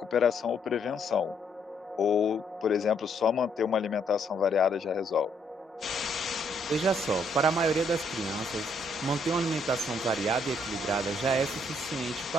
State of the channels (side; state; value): both; normal; correlation 0.71